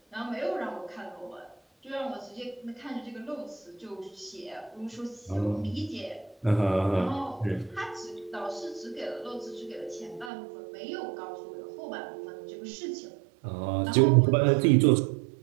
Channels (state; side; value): drops out; left; at 10.3 s